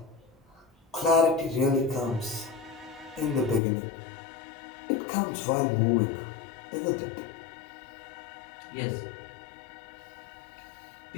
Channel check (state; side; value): drops out; right; at 3.6 s